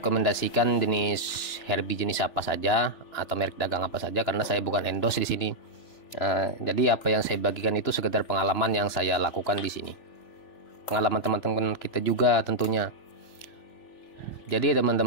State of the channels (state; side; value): late; right; 2.9 ms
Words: jenis herbi jenis apa saja atau merek dagang apa saja, karena saya bukan endorse di sini. Jadi apa yang saya bagikan itu sekedar pengalaman yang saya lakukan di sini, pengalaman teman-teman kita juga tentunya. Jadi